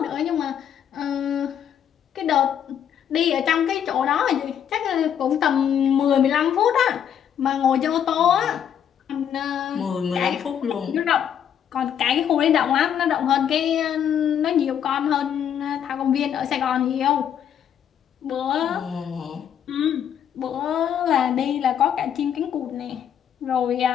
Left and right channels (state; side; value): quieter; right; 9.1 dB